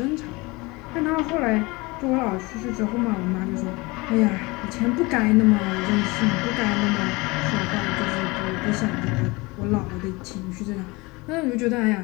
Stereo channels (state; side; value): quieter; right; 24.2 dB